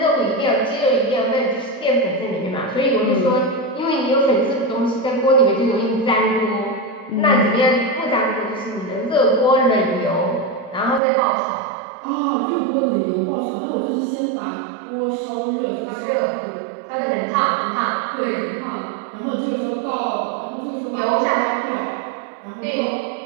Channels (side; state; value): left; drops out; at 11.0 s